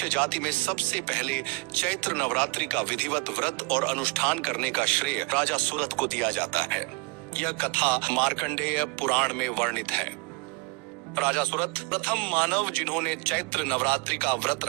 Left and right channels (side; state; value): left; quieter; 27.7 dB